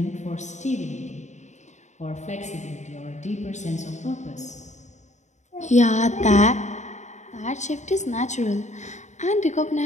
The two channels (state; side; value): late; right; 0.34 ms